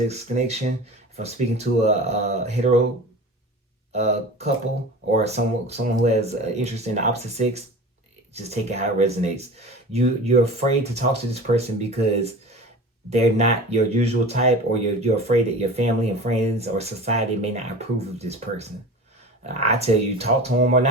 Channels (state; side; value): normal; both; correlation 0.35